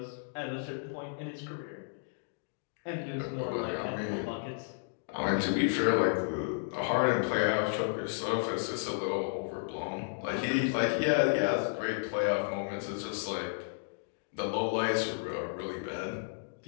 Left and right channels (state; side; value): silent; right; digital silence